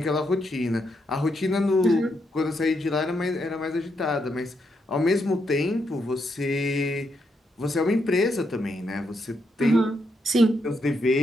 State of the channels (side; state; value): both; normal; correlation 0.80